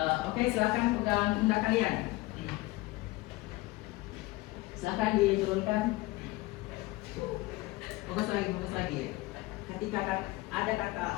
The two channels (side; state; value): right; quieter; 20.1 dB